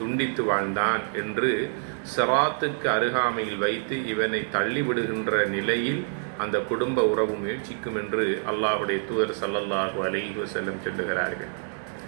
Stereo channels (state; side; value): silent; left; digital silence